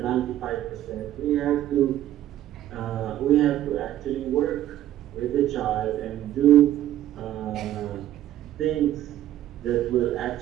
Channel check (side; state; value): left; quieter; 12.7 dB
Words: 95%, we have to actually work with the child and do things that will